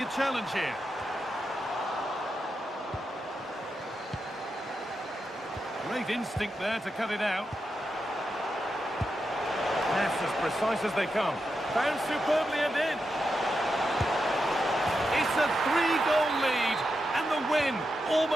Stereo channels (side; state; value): both; normal; correlation 0.87